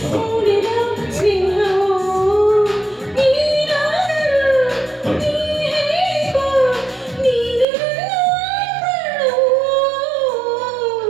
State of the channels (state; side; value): drops out; left; at 7.7 s